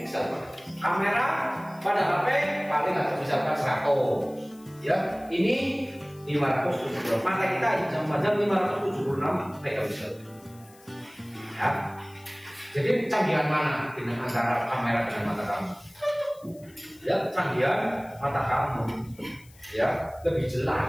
Kamera pada HP paling nggak bisa 100. Ya, ini 576. Mata kita cuma 576 megapiksel. Ya. Jadi canggihan mana dengan antara kamera dengan mata kamu? Ya, canggihan mata kamu. Ya, lebih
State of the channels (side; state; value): left; noise; hiss, 26 dB below the sound